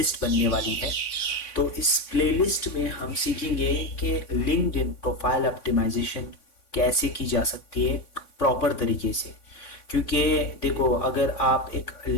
बनने वाली है। तो इस प्लेलिस्ट में हम सीखेंगे कि लिंक्डइन प्रोफाइल ऑप्टिमाइजेशन कैसे की जा सकती है प्रॉपर तरीके से। क्योंकि देखो, अगर आप एक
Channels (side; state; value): right; late; 3.5 ms